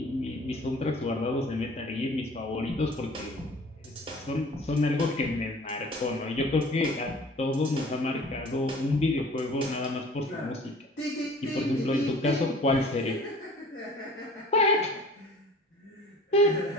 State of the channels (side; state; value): both; normal; correlation 0.47